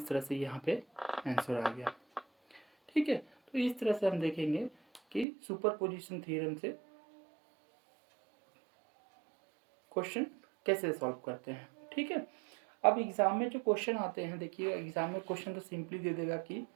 तरह से यहाँ पे आंसर आ गया, ठीक है। तो इस तरह से हम देखेंगे कि सुपरपोजिशन थ्योरम से क्वेश्चन कैसे सॉल्व करते हैं, ठीक है। अब एग्जाम में जो क्वेश्चन आते हैं, देखिए एग्जाम में क्वेश्चन तो सिंपली दे देगा कि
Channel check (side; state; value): left; drops out; at 5.2 s